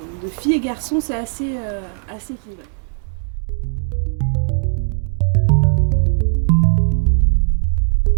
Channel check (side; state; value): left; silent; digital silence